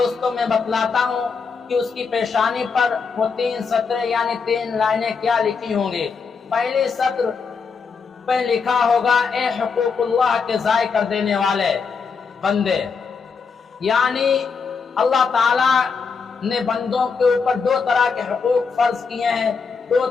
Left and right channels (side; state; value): right; quieter; 5.3 dB